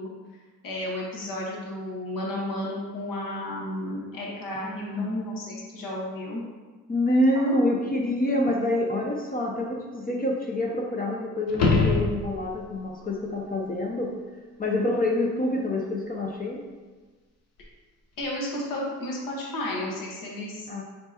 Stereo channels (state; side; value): normal; both; correlation 0.52